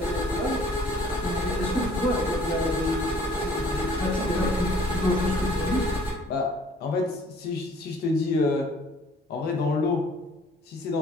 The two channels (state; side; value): normal; both; correlation 0.56